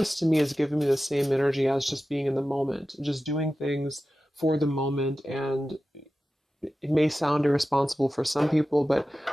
to me is giving me the same energy as just being in the moment, just doing things for the moment. And it may sound irresponsible for some people, but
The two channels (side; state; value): both; normal; correlation 0.94